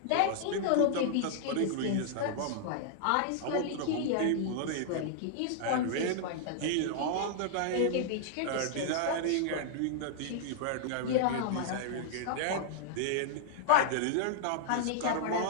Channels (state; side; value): different; both; correlation -0.01